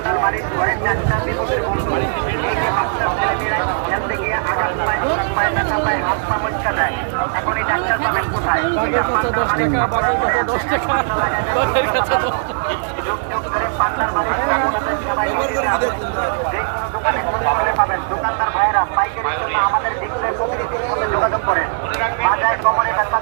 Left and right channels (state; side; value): silent; left; digital silence